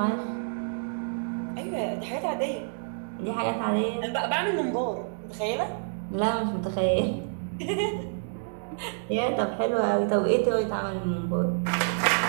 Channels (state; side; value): silent; left; digital silence